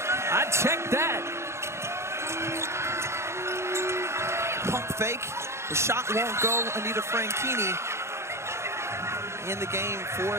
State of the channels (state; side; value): late; left; 0.13 ms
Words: I'd check that. Pump fake. The shot won't go. Anita Franchini in the game for